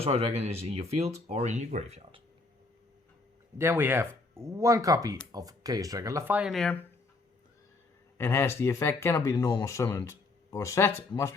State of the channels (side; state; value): right; quieter; 3.4 dB